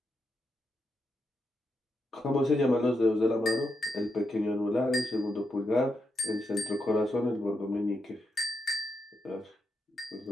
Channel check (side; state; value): both; normal; correlation 0.84